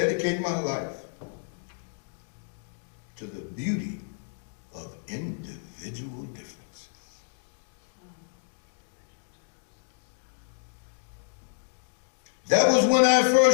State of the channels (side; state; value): right; silent; digital silence